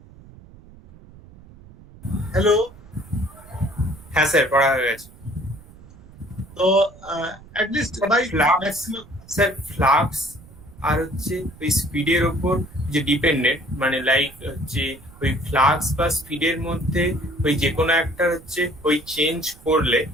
Hello? হ্যাঁ sir, পড়া হয়ে গেছে। তো at least by maximum, sir flux আর হচ্ছে ওই স্পিডের ওপর যে ডিপেন্ডেন্ট, মানে লাইক হচ্ছে ওই ফ্লাক্স বা স্পিডের মধ্যে ওই যে কোনো একটা হচ্ছে ওই চেঞ্জ করলে,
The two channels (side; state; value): right; noise; rumble, 21 dB below the sound